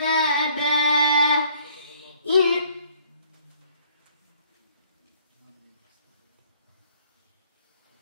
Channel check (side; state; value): both; inverted; correlation -0.60